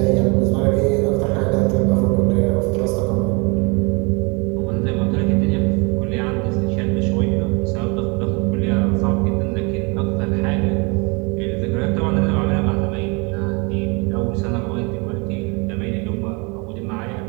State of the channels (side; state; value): left; quieter; 30.1 dB